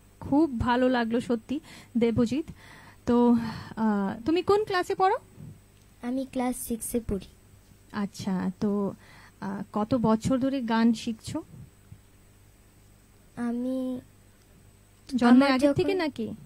খুব ভালো লাগলো সত্যি দেবজিৎ। তো তুমি কোন ক্লাসে পড়ো? আমি ক্লাস 6 এ পড়ি। আচ্ছা, তো কত বছর ধরে গান শিখছো? আমি জন্মের আগে থেকে নাকি?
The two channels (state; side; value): identical; both; correlation 1.00